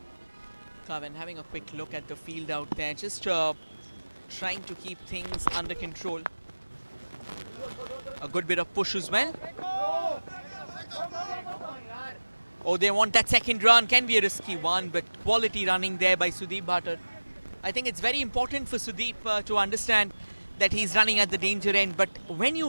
Kavin having a quick look at the field out there, just trying to keep things under control. A good bit of push as well. Oh, they want that second run. Can be a risky one, but quality running there by Sudeep Bhatta. I think it's very important for Sudeep to understand that he's running at the danger end. But when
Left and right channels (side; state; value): both; inverted; correlation -1.00